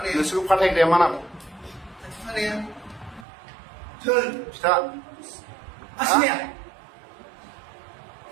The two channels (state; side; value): drops out; left; at 3.2 s